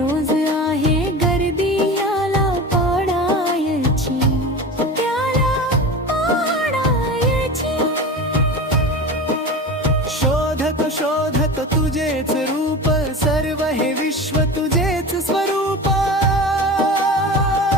आहे गर्दी, याला पाडायची त्याला पाडायची. शोधत शोधत तुझेच रूप, सर्व हे विश्व तुझेच स्वरूप.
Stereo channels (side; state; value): both; normal; correlation 0.31